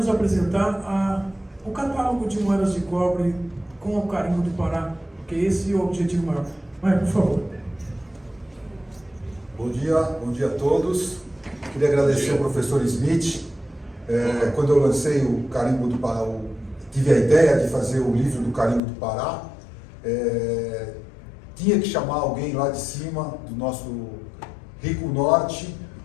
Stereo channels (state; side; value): drops out; right; at 18.8 s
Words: apresentar o catálogo de moedas de cobre com o carimbo do Pará, porque esse é o objetivo maior. Maier, por favor. Bom dia a todos. Queria agradecer ao professor Smith. Quando eu lancei o carimbo do Pará, tive a ideia de fazer o livro do carimbo do Pará. Tinha que chamar alguém lá de cima, do nosso rico norte,